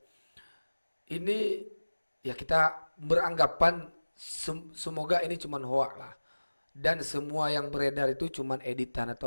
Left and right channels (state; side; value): inverted; both; correlation -1.00